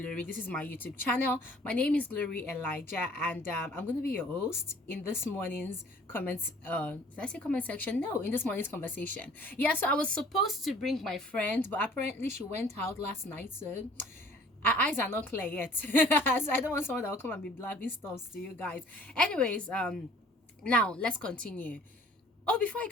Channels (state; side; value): normal; both; correlation 0.53